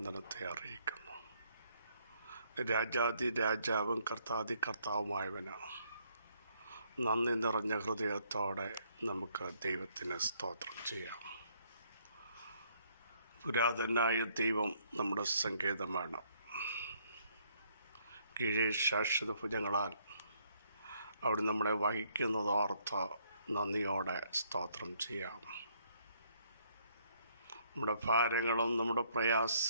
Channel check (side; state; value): both; inverted; correlation -0.68